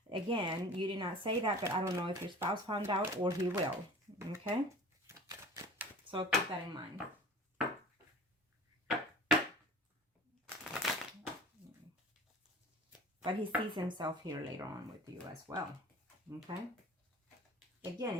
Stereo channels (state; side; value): normal; both; correlation 0.41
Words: Again, you did not say that, but I don't know if your spouse found out or he will. Okay? So keep that in mind. But he sees himself here later on with you as well. Okay?